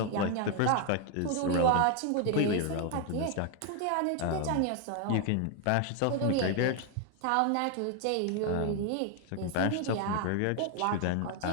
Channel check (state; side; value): different; both; correlation 0.00